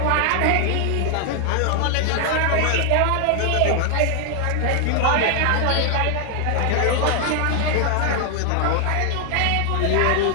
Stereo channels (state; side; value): different; both; correlation 0.00